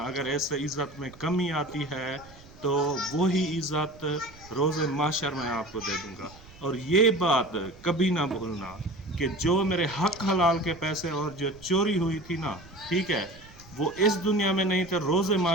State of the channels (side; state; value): right; noise; rumble, 22 dB below the sound